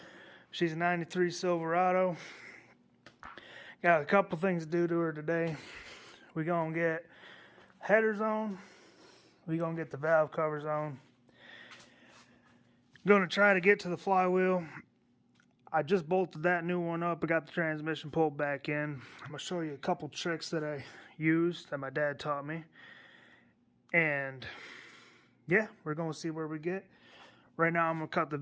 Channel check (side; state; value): both; identical; correlation 1.00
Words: She's a 93 Silverado. Got a couple things to do to her today. We're going to get headers on. We're going to get the valve covers on. Going to try to get to the flywheel. I just bolted that new one up. I got the transmission pulled back in. I'm going to show you a couple tricks that I used that my dad taught me. And yeah, we're going to see where we get. Right now I'm going to cut the